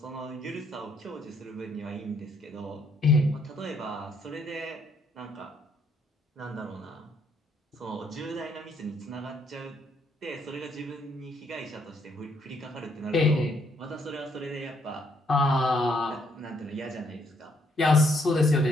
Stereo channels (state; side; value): normal; both; correlation 0.70